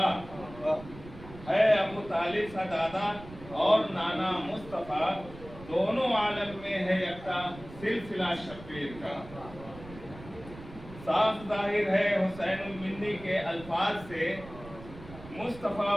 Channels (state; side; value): noise; right; rumble, 16 dB below the sound